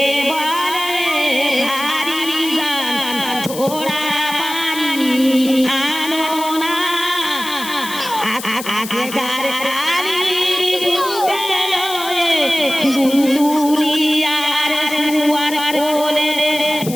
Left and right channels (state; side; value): noise; left; hiss, 11 dB below the sound